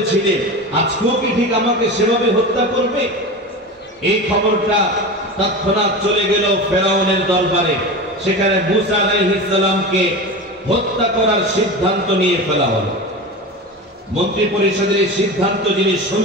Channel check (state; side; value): normal; both; correlation 0.28